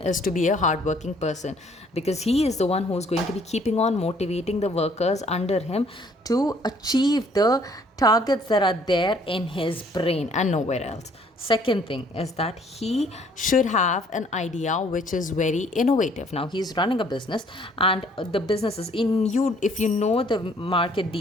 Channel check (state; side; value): normal; both; correlation 0.61